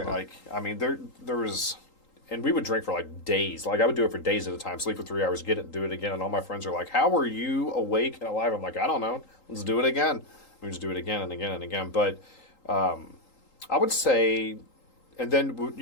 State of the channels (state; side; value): late; right; 3.8 ms